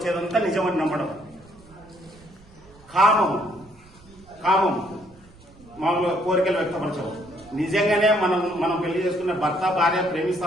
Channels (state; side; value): noise; right; rumble, 25 dB below the sound